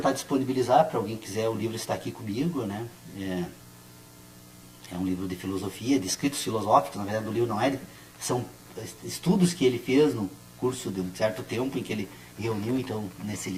disponibilizar para alguém que quiser, o livro está aqui comigo, né? É um livro de filosofia, de escritos filosóficos, na verdade o livro não são estudos que ele fez no curso de um certo tempo em que ele reuniu, então, nesse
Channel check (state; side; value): identical; both; correlation 1.00